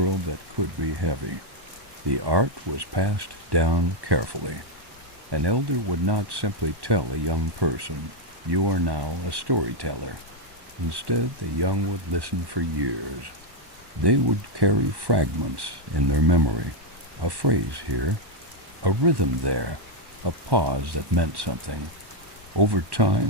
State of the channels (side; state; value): left; late; 1.1 ms